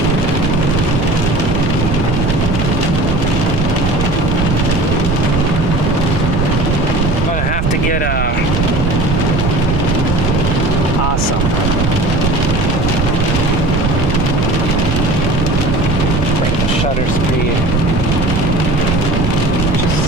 To get awesome. Break the shutter speed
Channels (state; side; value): noise; right; rumble, 2 dB below the sound